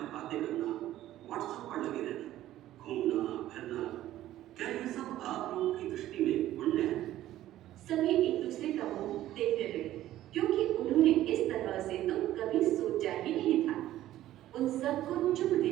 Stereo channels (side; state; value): left; quieter; 13.8 dB